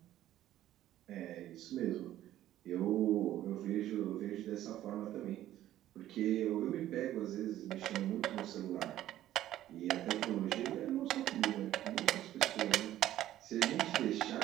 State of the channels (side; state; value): left; quieter; 13.2 dB